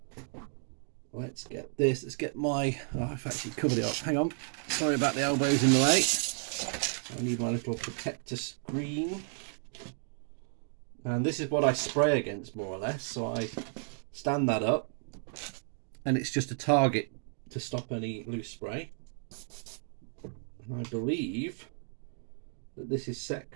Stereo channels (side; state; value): left; silent; 56 dB below the other